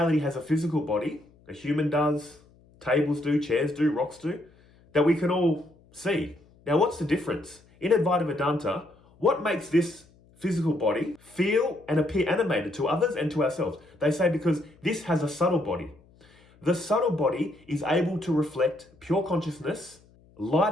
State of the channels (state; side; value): noise; left; hum, 29 dB below the sound